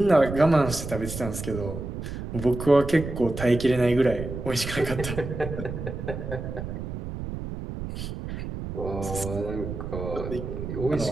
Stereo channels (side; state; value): right; noise; rumble, 7 dB below the sound